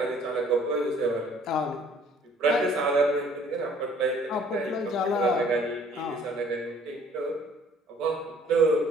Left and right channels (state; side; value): normal; both; correlation 0.57